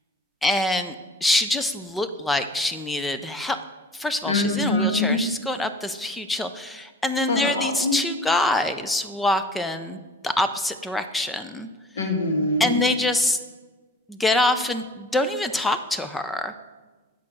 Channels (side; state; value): both; normal; correlation 0.45